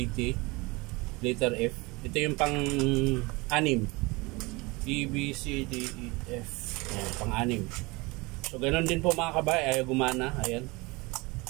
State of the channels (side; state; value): left; quieter; 24.6 dB